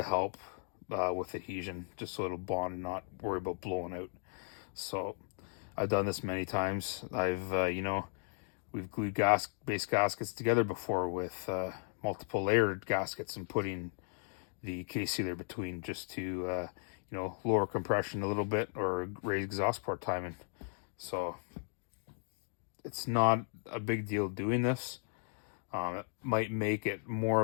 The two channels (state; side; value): silent; right; 54 dB below the other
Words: help with adhesion, just so it'll bond and not worry about blowing out. So I've done this many times. You know, we've glued base gaskets together before with multiple layered gaskets and putting the case sealer between, just to you know, lower compression a little bit or raise exhaust port timing. So it's not a big deal doing this. It might make it more